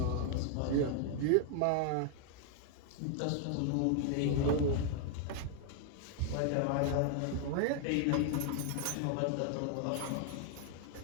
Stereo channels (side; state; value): both; different; correlation 0.00